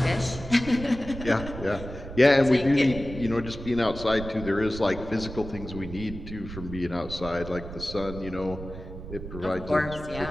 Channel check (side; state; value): right; noise; rumble, 11 dB below the sound